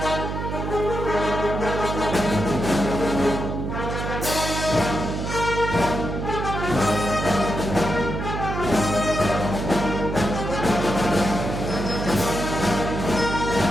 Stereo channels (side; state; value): right; noise; hum, 4 dB below the sound